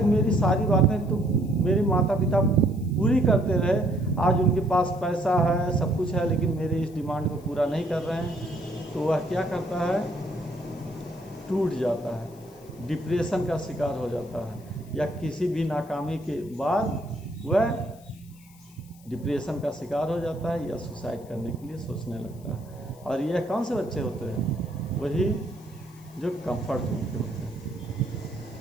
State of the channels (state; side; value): noise; left; hiss, 26 dB below the sound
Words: मेरी सारी बातें तो मेरे माता पिता पूरी करते रहे, आज उनके पास पैसा है, सब कुछ है, लेकिन मेरे इस डिमांड को पूरा नहीं कर रहे हैं। तो वह क्या करता है, टूट जाता है, डिप्रेशन का शिकार हो जाता है, या किसी भी नाकामी के बाद वह डिप्रेशन का शिकार हो जाता है या सुसाइड करने के लिए सोचने लगता है। और यह कौन से बच्चे होते हैं, वही जो कंफर्ट जोन के होते हैं।